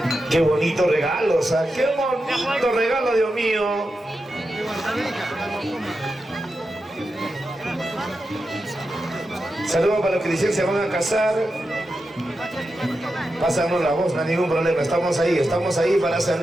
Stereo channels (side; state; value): both; normal; correlation 0.89